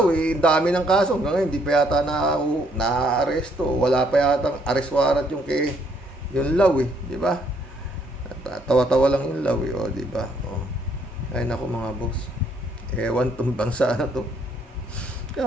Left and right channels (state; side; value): normal; both; correlation 0.68